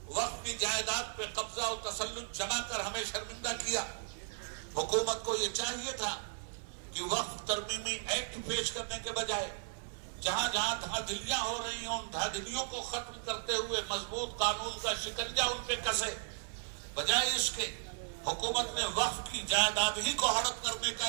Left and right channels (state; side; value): silent; left; 54 dB below the other